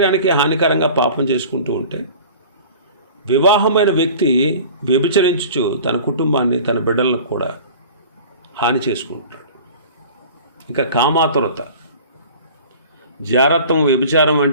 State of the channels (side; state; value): both; inverted; correlation -0.42